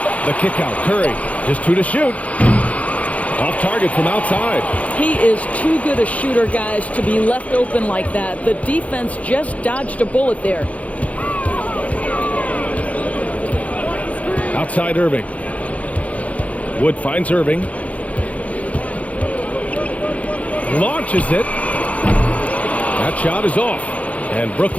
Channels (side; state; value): right; late; 0.067 ms